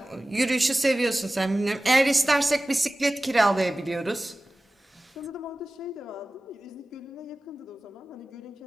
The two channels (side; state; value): both; normal; correlation 0.96